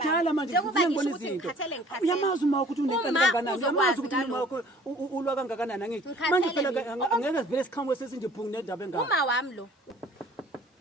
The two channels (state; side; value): normal; both; correlation 0.52